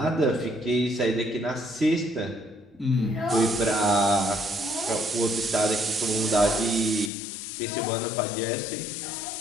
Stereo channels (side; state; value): right; drops out; at 7.1 s